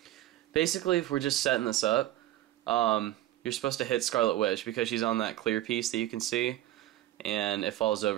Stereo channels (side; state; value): left; quieter; 14.4 dB